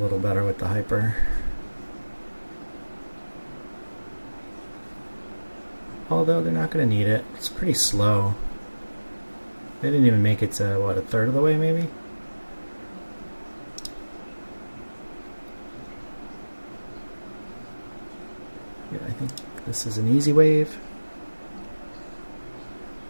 better with the hyper. Although they're not going to need it. It's pretty slow. They didn't even make it to, what, a third of the way maybe? Yeah, I think this is an easy wave.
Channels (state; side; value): inverted; both; correlation -1.00